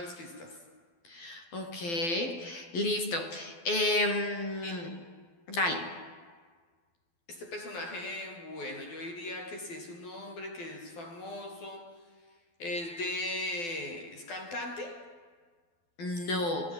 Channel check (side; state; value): right; late; 12 ms